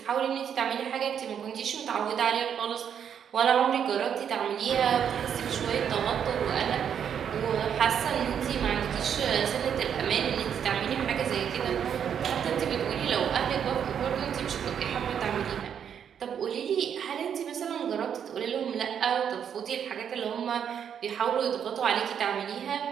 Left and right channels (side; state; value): left; quieter; 8.3 dB